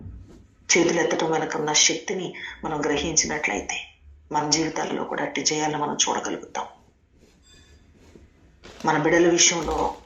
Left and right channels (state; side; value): identical; both; correlation 1.00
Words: చేతులు ఎత్తడం వెనక ఉన్న శక్తిని మనం గ్రహించినట్లయితే మన జీవితాల్లో కూడా అట్టి జయాలను మనం చూడగలుగుతాం. మన బిడ్డల విషయంలో